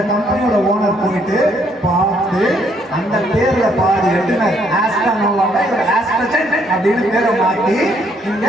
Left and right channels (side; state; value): both; normal; correlation 0.69